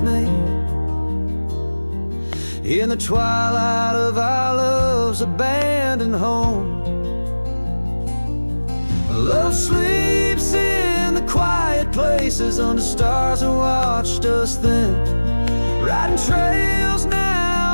me, in the twilight of our love's abandoned home. Love sleeps in the quiet places under stars that watched us then, riding trails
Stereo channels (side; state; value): both; inverted; correlation -1.00